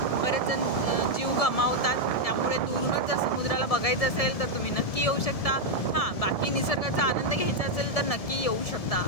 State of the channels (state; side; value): late; right; 1.7 ms